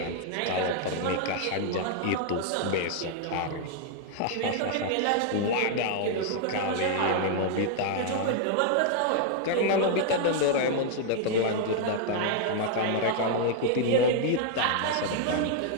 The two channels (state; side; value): different; both; correlation 0.00